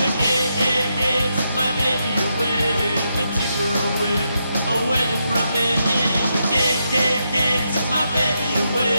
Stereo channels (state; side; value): inverted; both; correlation -0.82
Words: KKK took my baby away, they took her away from me. The KKK took my baby